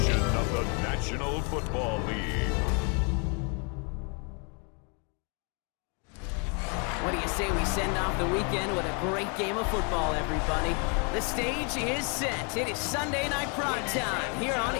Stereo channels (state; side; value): quieter; right; 36.0 dB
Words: of the National Football League. What do you say we send off the weekend with a great game of football, everybody? The stage is set. It is Sunday night prime time here on